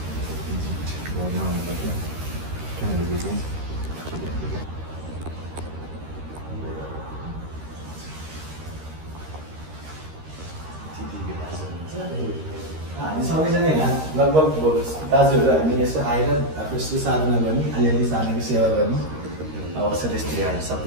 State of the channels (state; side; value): late; left; 13 ms